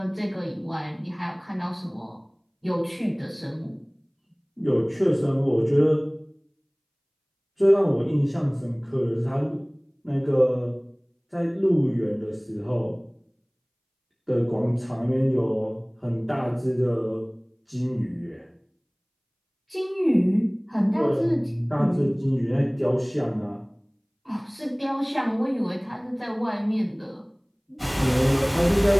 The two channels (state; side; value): identical; both; correlation 1.00